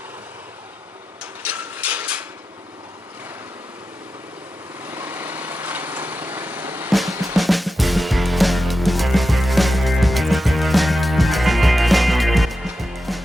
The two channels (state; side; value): normal; both; correlation 0.91